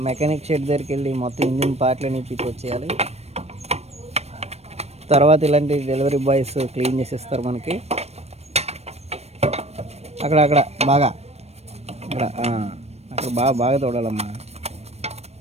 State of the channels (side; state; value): left; late; 0.31 ms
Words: మెకానిక్ షెడ్ దగ్గరికి వెళ్ళి మొత్తం ఇంజిన్ పార్ట్లని వచ్చేయాలి. తర్వాత ఇలాంటి డెలివరీ బాయ్స్ క్లీన్ చేసేస్తారు మనకి. అక్కడ బాగా అక్కడ బాగా తోడాలమ్మా.